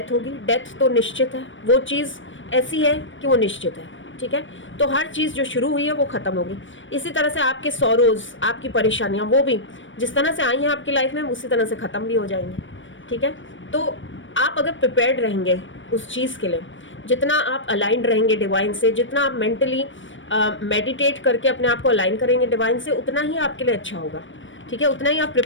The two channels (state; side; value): late; right; 0.56 ms